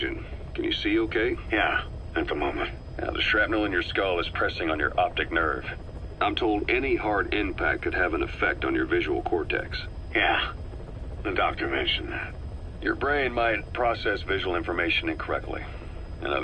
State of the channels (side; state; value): both; identical; correlation 1.00